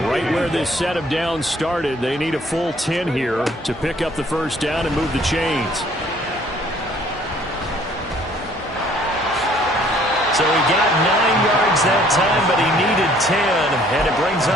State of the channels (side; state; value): both; normal; correlation 0.59